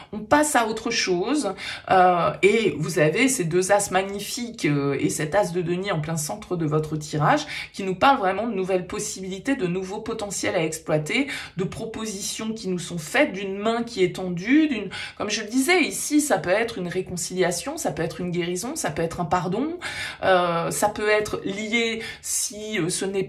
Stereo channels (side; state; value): both; identical; correlation 1.00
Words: on passe à autre chose et vous avez ces deux as magnifiques et cet as de denier en plein centre de votre tirage qui nous parlent vraiment de nouvelles possibilités, de nouveaux potentiels à exploiter, de propositions qui nous sont faites, d'une main qui est tendue, comme je le disais, ici, ça peut être une réconciliation, ça peut être une guérison, ça peut être un pardon, ça peut être lié, si ce n'est